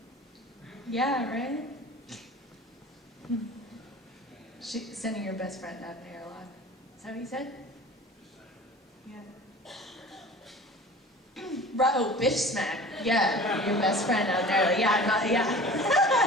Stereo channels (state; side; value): normal; both; correlation 0.41